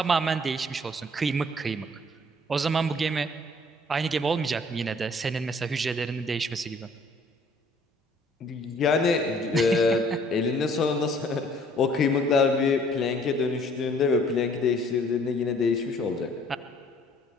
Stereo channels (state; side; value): normal; both; correlation 0.58